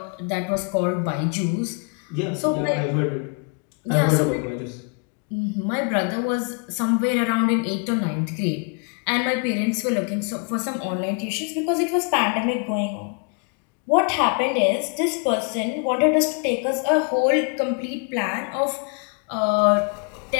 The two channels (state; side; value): quieter; right; 37.3 dB